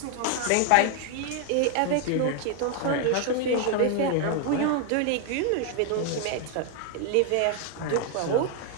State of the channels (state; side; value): different; both; correlation 0.00